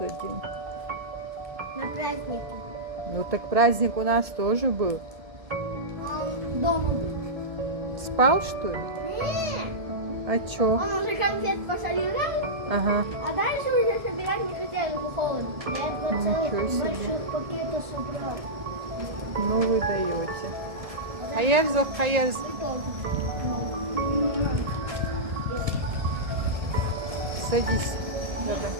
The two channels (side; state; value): left; late; 1.7 ms